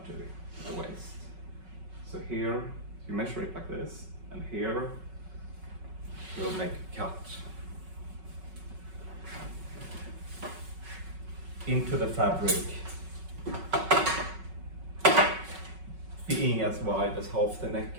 to the waist. So here you measure it like this, and here you'll make a cut into the fabric, being as wide as half the neck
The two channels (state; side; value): late; left; 5.4 ms